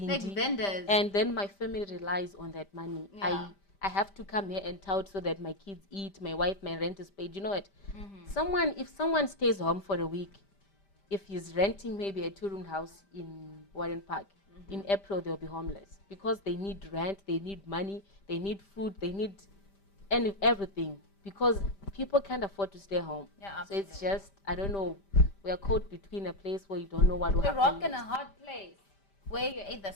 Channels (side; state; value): right; late; 5.1 ms